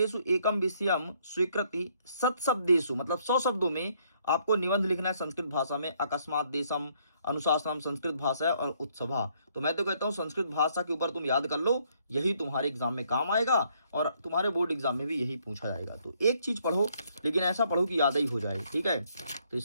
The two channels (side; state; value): both; inverted; correlation -0.68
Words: एकम विषयम स्वीकृति सत्शब्देषु, मतलब 100 शब्दों में आपको निबंध लिखना है संस्कृत भाषा में। अकस्मात देशम, अनुशासनम संस्कृत भाषा है, और उत्सभा। तो मैं तो कहता हूँ संस्कृत भाषा के ऊपर तुम याद कर लो, यही तुम्हारे एग्जाम में काम आएगा, और तुम्हारे बोर्ड एग्जाम में भी यही पूछा जाएगा। तो एक चीज पढ़ो, लेकिन ऐसा पढ़ो कि याद ही हो जाए, ठीक है। तो